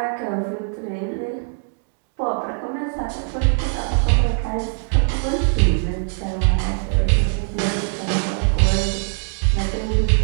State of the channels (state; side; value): silent; left; 63 dB below the other